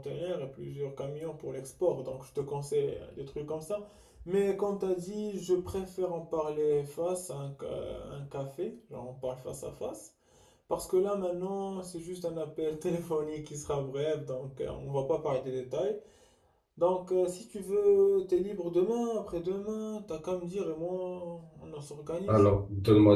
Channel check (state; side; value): identical; both; correlation 1.00